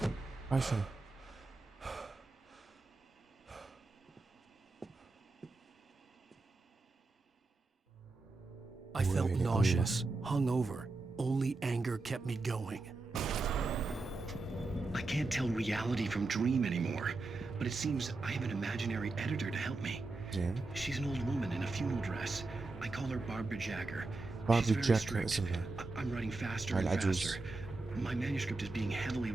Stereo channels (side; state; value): left; quieter; 3.4 dB